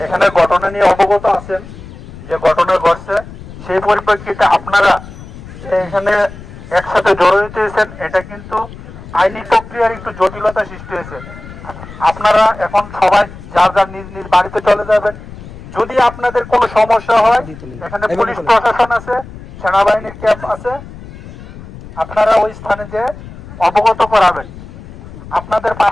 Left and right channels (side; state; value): left; noise; rumble, 15 dB below the sound